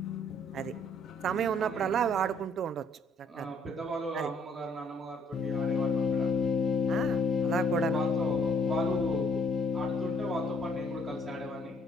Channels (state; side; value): normal; both; correlation 0.64